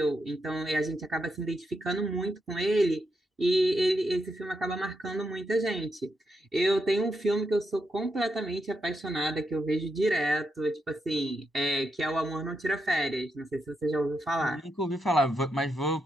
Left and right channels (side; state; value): both; normal; correlation 0.83